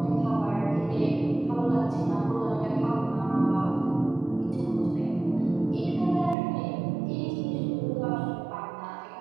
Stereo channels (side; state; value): left; drops out; at 6.4 s